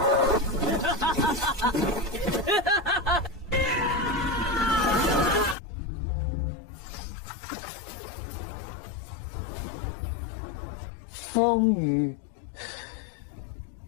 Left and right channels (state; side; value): drops out; right; at 5.6 s